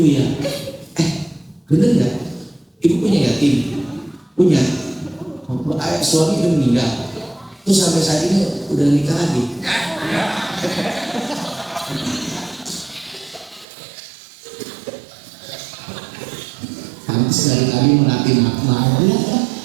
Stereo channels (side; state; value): left; drops out; at 13.7 s